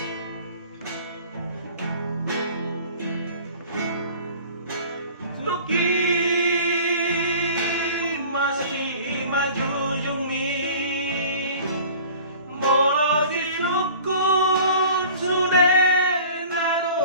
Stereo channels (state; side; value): inverted; both; correlation -0.45